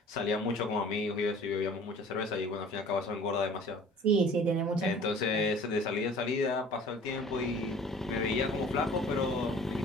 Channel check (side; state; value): both; normal; correlation 0.47